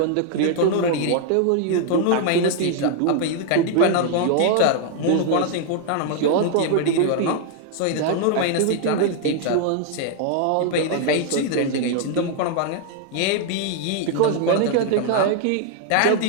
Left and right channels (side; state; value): both; different; correlation 0.00